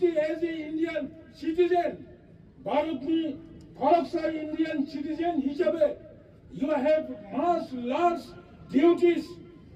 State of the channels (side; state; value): both; identical; correlation 1.00